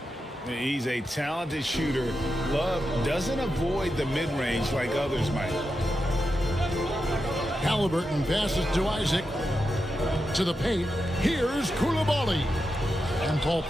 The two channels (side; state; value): both; normal; correlation 0.88